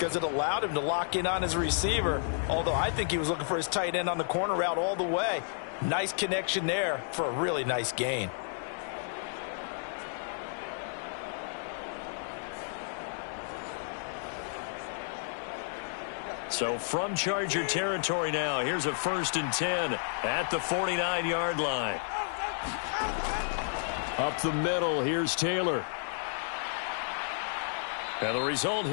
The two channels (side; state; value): right; silent; digital silence